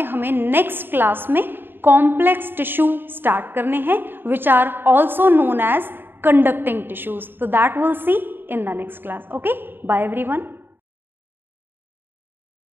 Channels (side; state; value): left; late; 0.098 ms